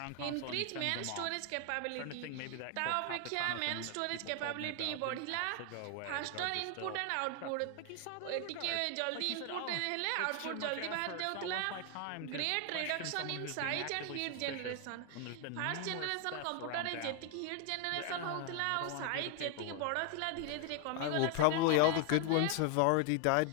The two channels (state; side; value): different; both; correlation 0.00